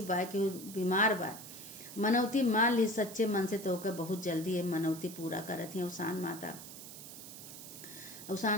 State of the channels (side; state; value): right; noise; hiss, 13 dB below the sound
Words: बा, केहू बीमार बा, मनौती मान ली सच्चे मन से तो ओके बहुत जल्दी है मनौती पूरा करत है अवसान माता।